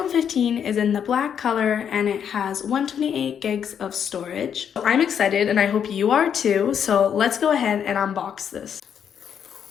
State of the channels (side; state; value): right; quieter; 8.2 dB